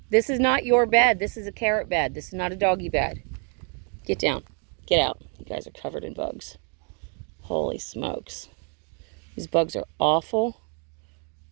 This is not your bed. This is a carrot bed. This is not a doggy bed. Get down. Get out. You guys are covered in bugs. Holy smokes. These bugs are awful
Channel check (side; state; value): left; quieter; 39.9 dB